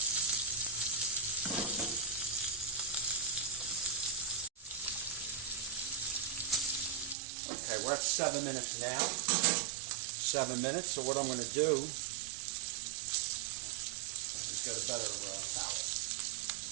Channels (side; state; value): left; drops out; at 7.2 s